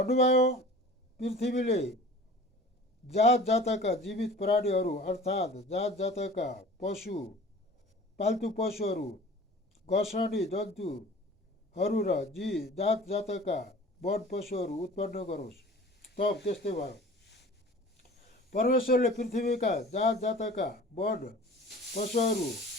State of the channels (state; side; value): normal; both; correlation 0.43